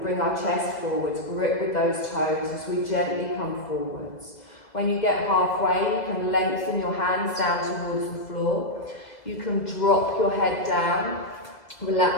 our chest forwards, grip with those toes as we gently come forwards. When you get halfway, you can lengthen your hands down towards the floor. You can drop your head down,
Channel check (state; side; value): late; right; 2.0 ms